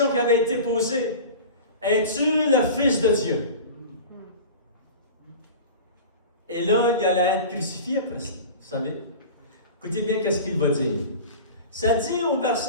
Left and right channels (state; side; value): inverted; both; correlation -0.35